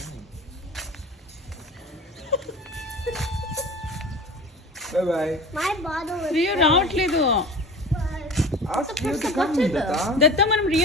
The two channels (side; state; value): both; normal; correlation 0.35